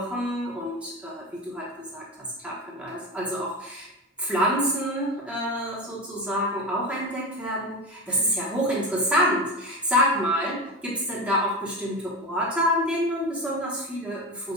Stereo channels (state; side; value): normal; both; correlation 0.22